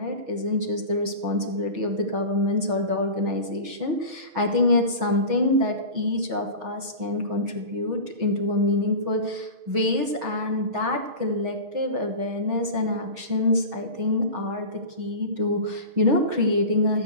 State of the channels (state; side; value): late; left; 6.2 ms